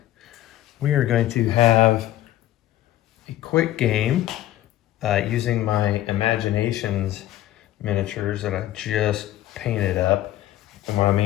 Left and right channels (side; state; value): right; quieter; 14.2 dB